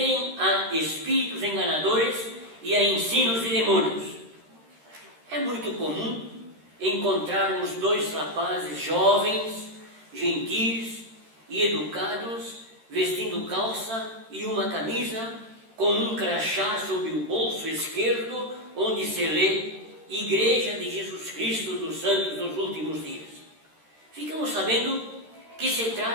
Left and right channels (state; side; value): late; left; 13 ms